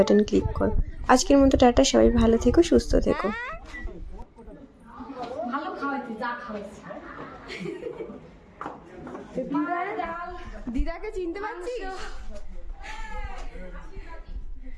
ক্লিক করো। আজকের মতো টাটা, সবাই ভালো থেকো, সুস্থ থেকো। দিদাকে চিনতে পারছিস?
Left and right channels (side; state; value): both; identical; correlation 1.00